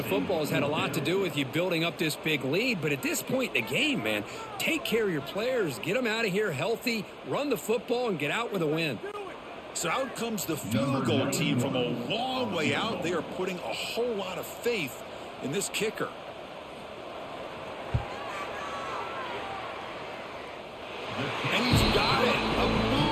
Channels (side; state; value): both; identical; correlation 1.00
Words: football has had a lot to do with you building up this big lead, but at this point in the game, man, take care of your players, get them out of here healthy, run the football, and get out with a win. So out comes the field goal team from a long way out. They are putting a whole lot of faith in this kicker. And he's got it. A